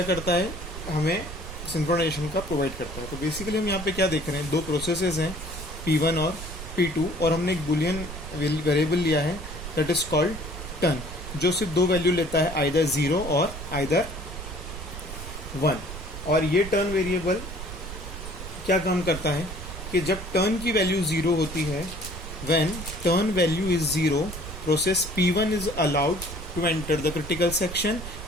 करता है, हमें सिंक्रोनाइजेशन का प्रोवाइड करता है. तो बेसिकली हम यहाँ पे क्या देख रहे हैं, दो प्रोसेसेस हैं P1 और P2 और हमने एक बुलियन वेरिएबल लिया है दैट इज कॉल्ड टर्न, जो सिर्फ दो वैल्यू लेता है, आइदर 0 और आइदर 1. और ये टर्न वेरिएबल क्या काम करता है कि जब टर्न की वैल्यू 0 होती है, when turn value is 0, process P1 is allowed to enter the critical section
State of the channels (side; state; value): right; noise; rumble, 10 dB below the sound